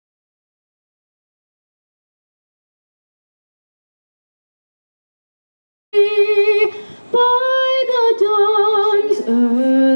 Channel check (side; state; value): both; inverted; correlation -1.00